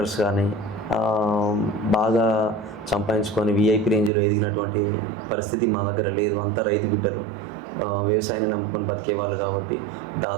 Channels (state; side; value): drops out; left; at 4.1 s